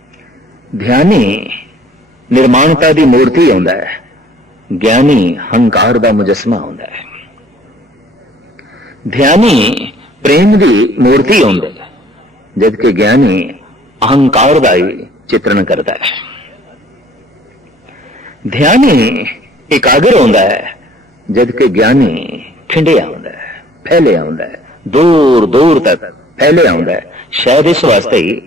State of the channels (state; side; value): normal; both; correlation 0.55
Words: ध्यानी निर्माणता दी मूर्ति होंदा है, ज्ञानी हंकार दा मुजस्मा होंदा है। ध्यानी प्रेम दी मूर्ति होंदा है, जबकि ज्ञानी अहंकार दा ही चित्रण करता है। ध्यानी एकाग्र होंदा है, जबकि ज्ञानी ठिंडिया होंदा है, फैलिया होंदा है, दूर दूर तक फैलिया होंदा है। शायद इस वास्ते